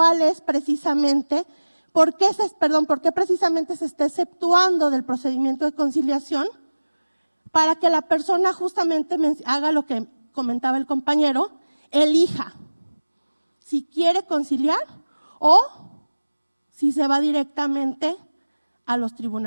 es precisamente, por qué precisamente se está exceptuando del procedimiento de conciliación para que la persona justamente haga lo que comentaba el compañero, elija si quiere conciliar o si se va directamente a los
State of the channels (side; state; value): both; inverted; correlation -1.00